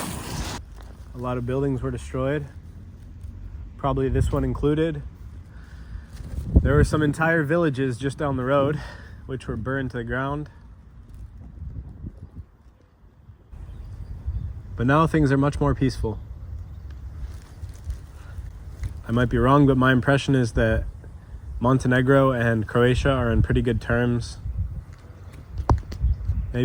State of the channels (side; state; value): both; identical; correlation 1.00